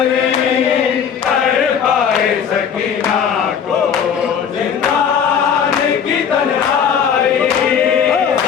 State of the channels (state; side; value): quieter; right; 7.6 dB